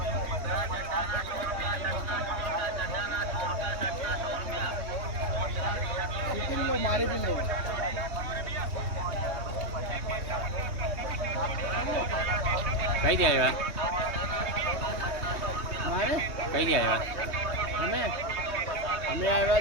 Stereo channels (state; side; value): late; left; 3.2 ms